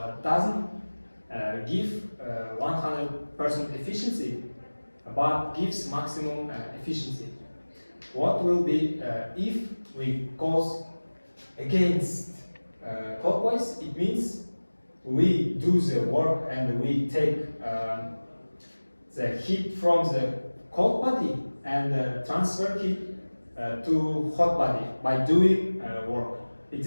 doesn't give 100% efficiency, but gives maximum efficiency. What will be if we goes against clockwise? It means we do the work and we take the heat from the cold body and transfer heat to hot body by doing work. It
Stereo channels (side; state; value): both; inverted; correlation -1.00